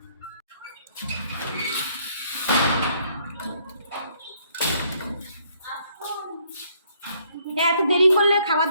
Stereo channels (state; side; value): inverted; both; correlation -0.67